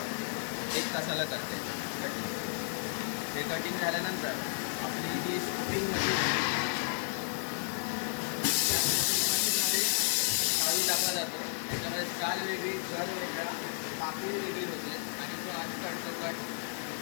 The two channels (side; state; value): right; silent; digital silence